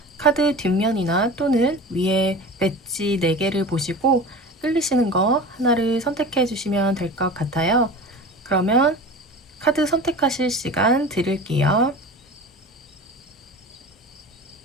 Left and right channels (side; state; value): both; normal; correlation 0.35